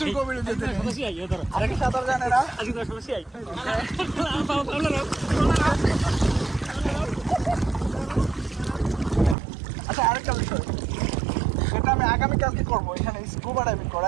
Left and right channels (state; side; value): drops out; left; at 9.3 s